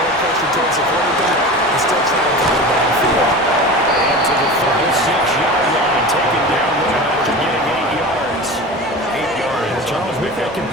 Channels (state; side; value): normal; both; correlation 0.32